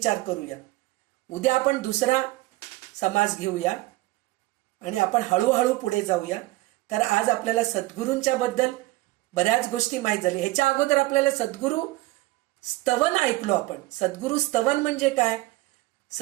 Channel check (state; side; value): quieter; left; 19.7 dB